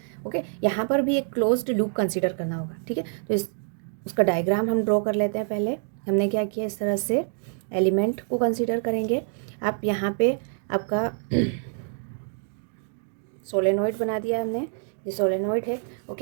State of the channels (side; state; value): left; silent; 57 dB below the other